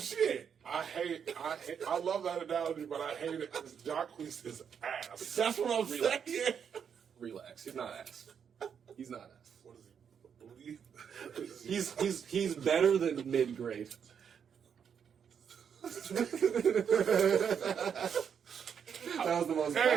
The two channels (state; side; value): quieter; left; 7.5 dB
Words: shit. I love that analogy, but I hate it because Jacquees is ass. That's what I'm Relax. saying. Relax. He's not ass. He's not ass. What is he? Booty? He's better than mid grade. That was the most